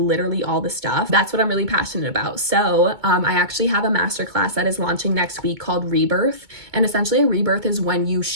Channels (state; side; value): late; left; 2.2 ms